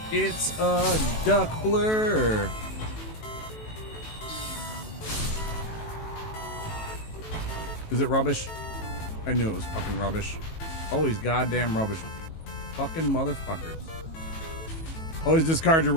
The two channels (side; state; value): right; late; 18 ms